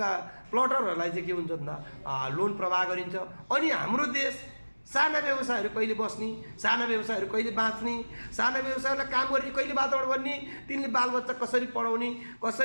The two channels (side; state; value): both; inverted; correlation -1.00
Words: प्लटरहरूलाई चाहिँ के हुन्छ भन्दा लोन प्रवाह गरिन्छ। अनि हाम्रो देश साना व्यवसायहरू कहिले बस्ने, साना व्यवसायहरू कहिले बाँच्ने, साना व्यवसायलाई काम गर्ने कहिले वातावरण बन्ने, तिनले बालबच्चा कसरी पढाउने,